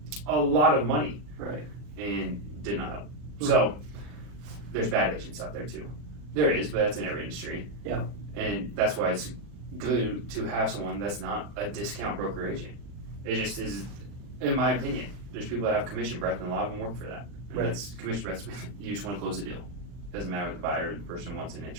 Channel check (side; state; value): left; late; 40 ms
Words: a lot of money. Right. And did not help. So there's bad agents out there too. There is, but that's in every industry. Yeah. And that's why it's good to have someone that's not a discount broker agent. It just is, in my opinion. There's people that have commission breath, and a lot of them work for that. And Right. that's commission breath. You just want to close the deal. Doesn't matter what the buyer or the person wants in